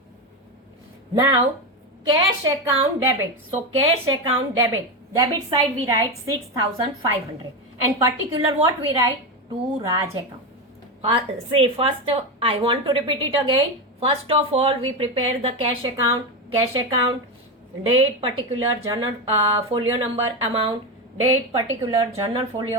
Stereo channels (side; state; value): both; normal; correlation 0.13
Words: Now, cash account debit. So, cash account debit. Debit side we write 6,500. And particular what we write? To Raj account. First, I want to repeat it again. First of all, we prepare the cash account. Cash account, date, particular, journal folio number, amount, date, particular, journal